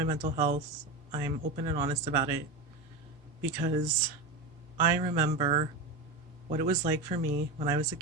mental health. I'm open and honest about it because I remember what it was like for me when I was a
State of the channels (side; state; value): left; quieter; 3.1 dB